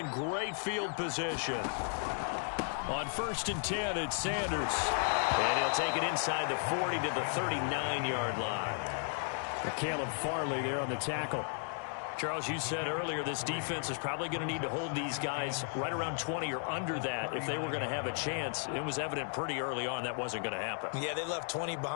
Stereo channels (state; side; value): silent; right; 55 dB below the other